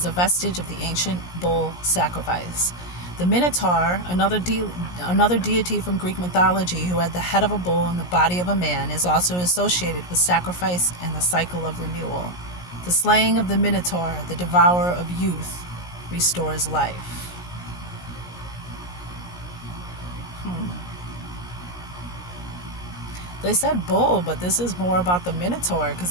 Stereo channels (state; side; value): late; right; 17 ms